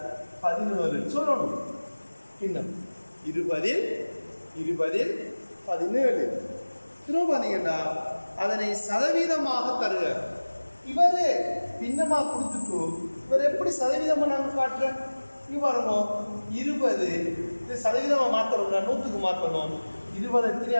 17 சொல்லணும். பின்னம் 20ல் 17 திரும்ப பார்த்தீங்கன்னா அதனை சதவீதமாக தருக. இவரு பின்னமா கொடுத்துட்டு இவர் எப்படி சதவீதமா நாங்கள் காட்டுறேன்? இங்க பாருங்க, 20 இது சதவீதமா மாற்றணும்னா 100க்கு மாற்றணும். 20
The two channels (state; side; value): inverted; both; correlation -1.00